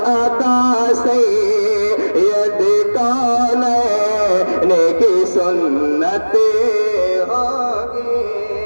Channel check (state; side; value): inverted; both; correlation -1.00